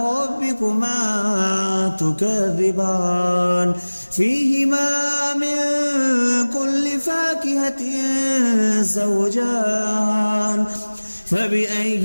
ربكما تكذبان فيهما من كل فاكهة زوجان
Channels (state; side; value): inverted; both; correlation -1.00